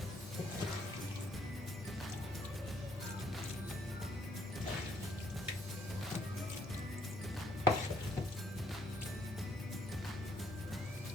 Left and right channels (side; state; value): both; normal; correlation 0.67